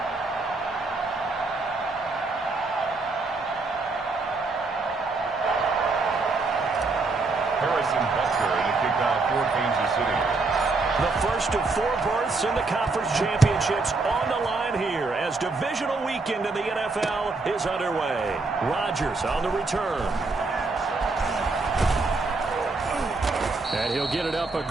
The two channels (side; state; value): left; quieter; 3.7 dB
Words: Harrison Butker to kick off for Kansas City. The first of 4 berths in the conference championships on the line here as divisional weekend in the NFL is underway. Rodgers on the return. And he'll get it up